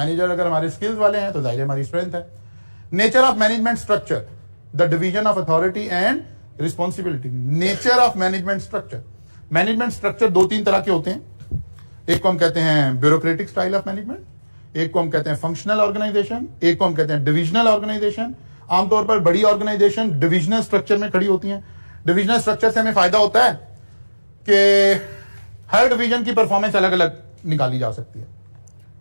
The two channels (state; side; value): inverted; both; correlation -1.00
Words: अगर हमारे स्किल्स वाले हैं तो जाहिर है हमारी स्ट्रेंथ है। Nature of management structure, the division of authority and responsibility. Nature of management structure, management structure दो तीन तरह के होते हैं। एक को हम कहते हैं ब्यूरोक्रेटिक स्टाइल ऑफ मैनेजमेंट, एक को हम कहते हैं फंक्शनल ऑर्गेनाइजेशन, एक को हम कहते हैं डिविजनल ऑर्गेनाइजेशन। आमतौर पर बड़ी ऑर्गेनाइजेशन डिविजनल स्ट्रक्चर में खड़ी होती हैं। डिविजनल स्ट्रक्चर से हमें फायदा होता है कि हर डिवीजन की परफॉर्मेंस अलग अलग निकाली जा सकती है,